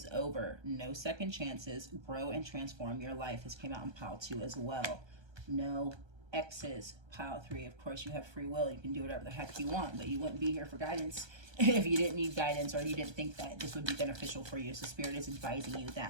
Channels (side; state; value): left; late; 1.3 ms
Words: over. No second chances. Grow and transform your life. This came out in pile 2 as well. No exes. Pile 3. Of course, you have free will. You can do whatever the heck you want, but you wouldn't be here for guidance if you didn't need guidance or you didn't think that this would be beneficial for you. So Spirit is advising you